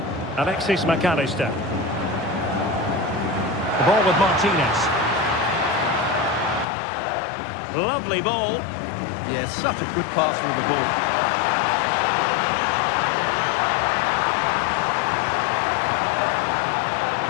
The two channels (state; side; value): drops out; right; at 6.7 s